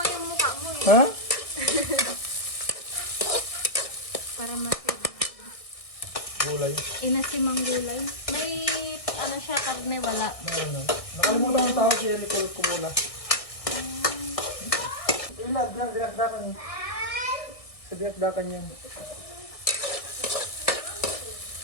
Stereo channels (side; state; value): right; late; 1.6 ms